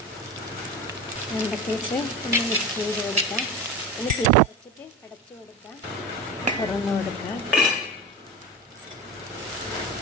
വെണ്ടയ്ക്കയിട്ട് ഒന്ന് മിക്സ് ചെയ്ത് കൊടുക്കാം. ഒന്ന് തീ അടച്ചിട്ട് അടച്ചു കൊടുക്കാം. തുറന്ന് കൊടുക്കാം.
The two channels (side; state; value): both; normal; correlation 0.26